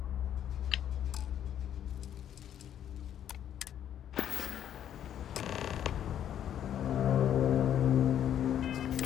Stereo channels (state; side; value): quieter; right; 10.1 dB